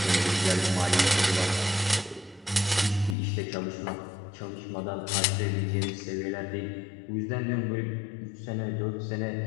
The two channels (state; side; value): drops out; right; at 3.2 s